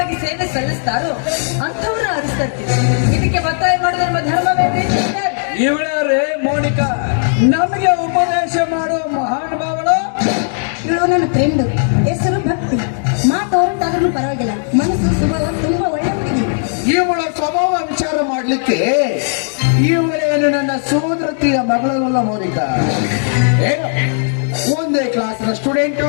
ಸೇವೆ ಸಲ್ಲಿಸ್ತಾರೋ ಅಂಥವ್ರನ್ನ ಆರಿಸ್ತಾ ಇರ್ತೀವಿ. ಇದಕ್ಕೆ ಒತ್ತಾಯ ಮಾಡೋದು ನಮ್ಮ ಧರ್ಮವೇನ್ರಿ ಮಿಸ್ಟರ್? ಇವಳೇ ಮೋನಿಕಾ ನಮಗೆ ಉಪದೇಶ ಮಾಡುವ ಮಹಾನುಭಾವಳು. ಇವಳು ನನ್ನ ಫ್ರೆಂಡ್, ಹೆಸರು ಭಕ್ತಿ. ಮಾತು ಹೊರಟಾದ್ರೂ ಪರವಾಗಿಲ್ಲ, ಮನಸ್ಸು ಸ್ವಭಾವ ತುಂಬಾ ಒಳ್ಳೆ ಹುಡುಗಿ. ಇವಳ ಸ್ವಭಾವ ವಿಚಾರ ಮಾಡ್ಲಿಕ್ಕೆ ಇವಳೇನು ನನ್ನ ಸೋದರತಿಯ ಮಗಳಲ್ಲ ಮೋನಿಕಾ. ಏನು ಒಂದೇ ಕ್ಲಾಸ್ನ ಸ್ಟೂಡೆಂಟು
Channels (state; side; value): silent; right; digital silence